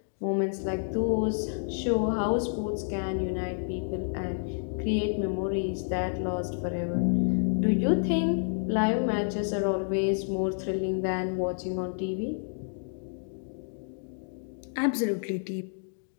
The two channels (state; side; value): silent; right; digital silence